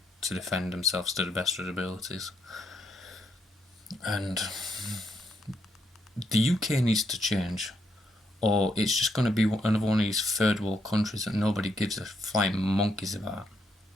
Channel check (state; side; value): normal; both; correlation 0.76